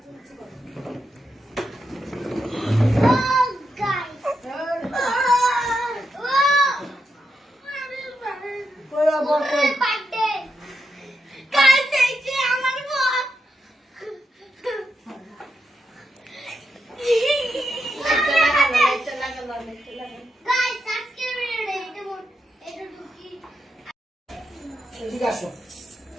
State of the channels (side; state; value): both; normal; correlation 0.84